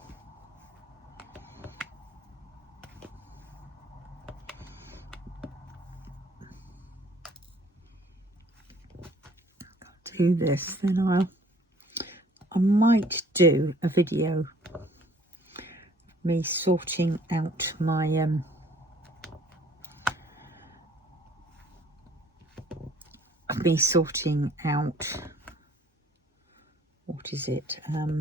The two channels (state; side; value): normal; both; correlation 0.57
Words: Do this, then I might do a video of me sorting out my what is it,